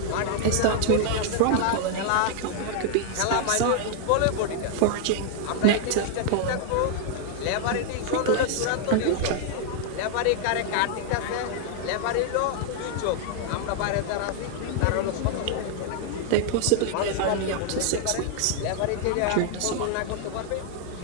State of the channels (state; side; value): different; both; correlation 0.00